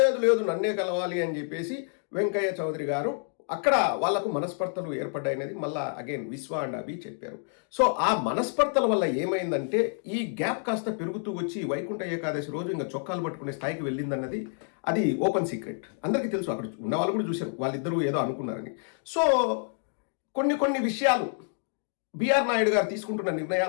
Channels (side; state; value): right; silent; 59 dB below the other